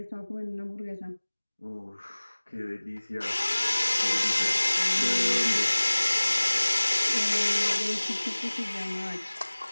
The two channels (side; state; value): both; inverted; correlation -1.00